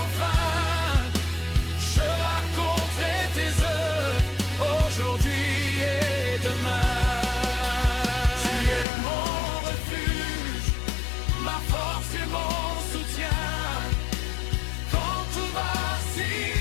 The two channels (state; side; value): drops out; right; at 8.8 s